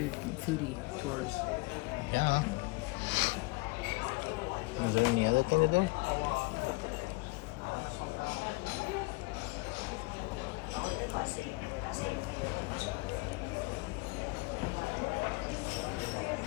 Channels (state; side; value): quieter; right; 25.3 dB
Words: foodie tours. Yeah. Is there any other thing to do?